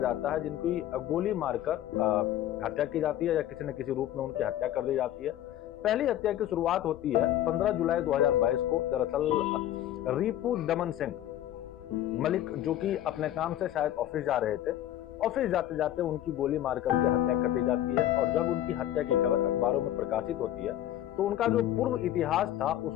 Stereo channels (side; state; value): right; quieter; 12.5 dB